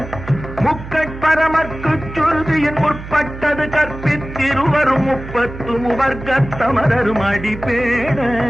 முக்கட்பரமக்கு சுருதியின் முற்பட்டது கற்பித்திருவரும் முப்பத்து முவர்க்கத் தமரரும் அடிப்பேன.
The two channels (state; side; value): noise; right; hum, 12 dB below the sound